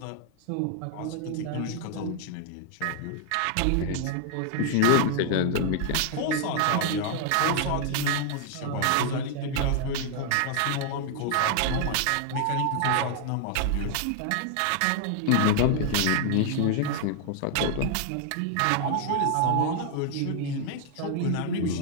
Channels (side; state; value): both; different; correlation 0.00